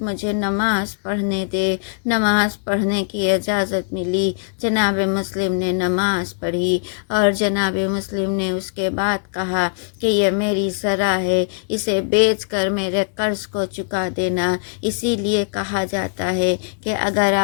مجھے نماز پڑھنے دے۔ نماز پڑھنے کی اجازت ملی، جناب مسلم نے نماز پڑھی اور جناب مسلم نے اس کے بعد کہا کہ یہ میری زرع ہے، اسے بیچ کر میرے قرض کو چکا دینا۔ اسی لیے کہا جاتا ہے کہ اگر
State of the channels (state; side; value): silent; right; 65 dB below the other